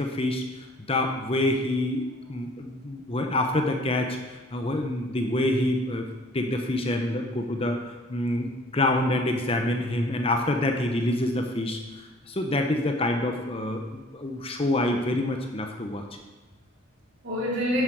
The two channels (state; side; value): normal; both; correlation 0.54